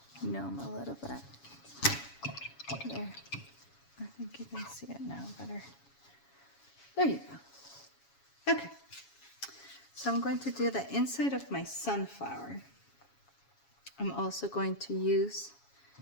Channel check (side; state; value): right; late; 7.2 ms